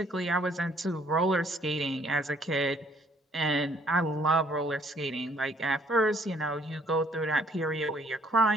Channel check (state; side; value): normal; both; correlation 0.63